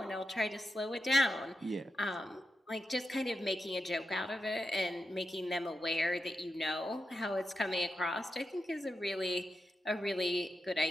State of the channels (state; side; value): normal; both; correlation 0.89